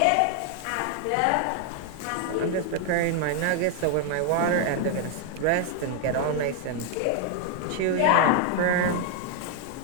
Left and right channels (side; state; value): both; different; correlation 0.00